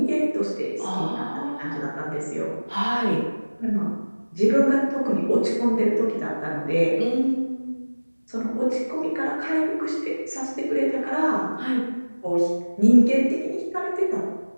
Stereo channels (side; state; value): both; inverted; correlation -1.00